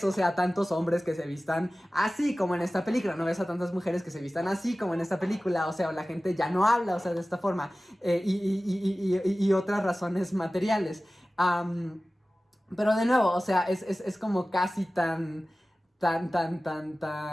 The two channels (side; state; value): both; normal; correlation 0.96